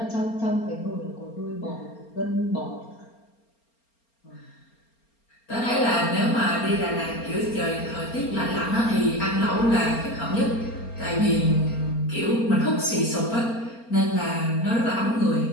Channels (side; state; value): right; late; 4.3 ms